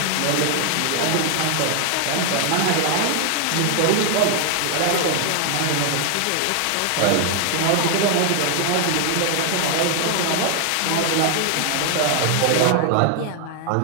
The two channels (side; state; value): both; different; correlation 0.00